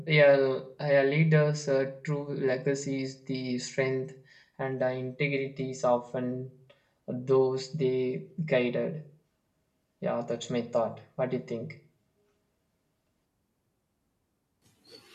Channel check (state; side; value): identical; both; correlation 1.00